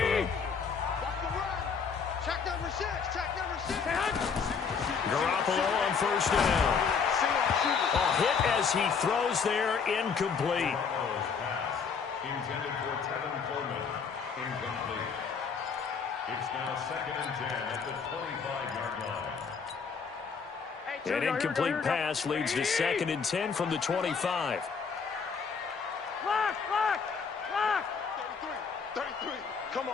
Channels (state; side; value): quieter; right; 5.9 dB